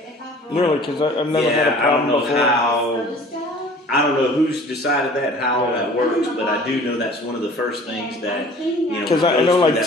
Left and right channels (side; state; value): both; normal; correlation 0.48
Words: Really? Because I've never had a problem before. I don't know who's decided that, how that works, but I do know that's one of the first things that, Because I know, like,